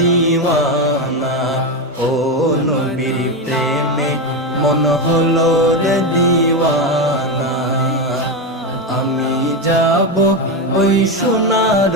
ও নবীর প্রেমে মন হলো রে দিওয়ানা। আমি যাব ওই সোনার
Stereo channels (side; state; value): both; normal; correlation 0.12